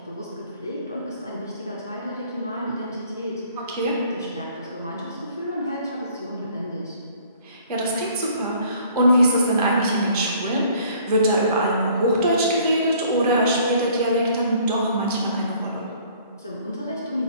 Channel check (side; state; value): both; inverted; correlation -0.57